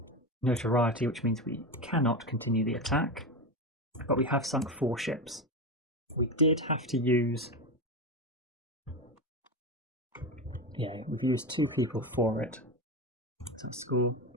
notoriety, which means we cannot continue the attack, but we have sunk 4 ships. We did have to use... Yeah, we've used 2 people for it. So the score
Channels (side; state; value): both; normal; correlation 0.18